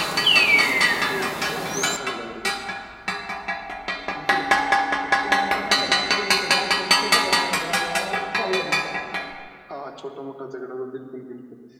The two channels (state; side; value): identical; both; correlation 1.00